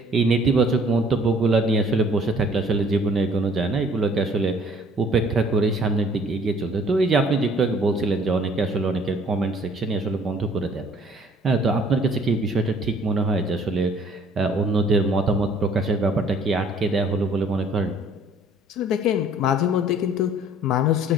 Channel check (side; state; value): both; normal; correlation 0.56